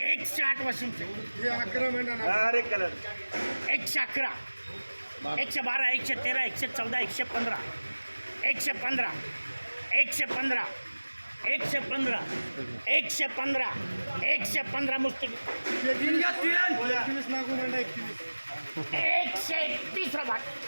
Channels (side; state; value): both; inverted; correlation -1.00